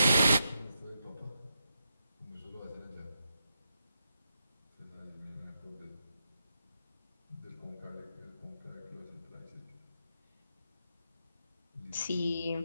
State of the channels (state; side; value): inverted; both; correlation -0.85